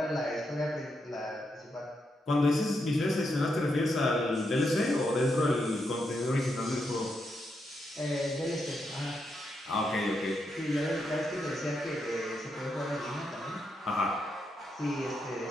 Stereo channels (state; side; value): normal; both; correlation 0.82